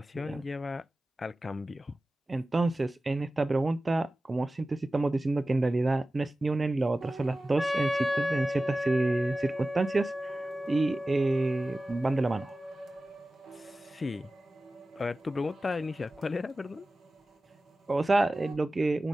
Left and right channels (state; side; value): normal; both; correlation 0.96